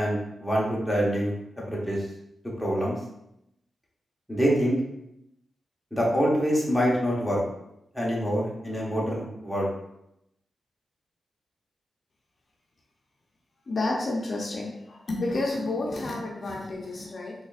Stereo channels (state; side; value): normal; both; correlation 0.89